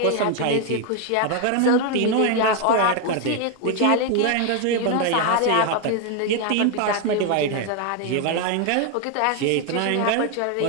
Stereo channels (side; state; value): both; different; correlation 0.01